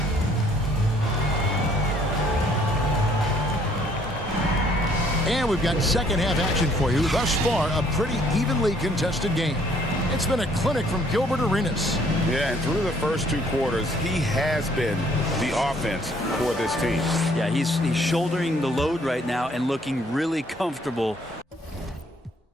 And we've got second half action for you. Thus far, a pretty evenly contested game. It's been a clinic from Gilbert Arenas. Yeah, and through the first 2 quarters, he has been the offense for this team. Yeah, he's shouldering the load right now and looking really comfortable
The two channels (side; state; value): both; normal; correlation 0.63